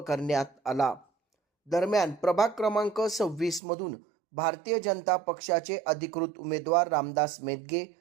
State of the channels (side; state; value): left; drops out; at 3.6 s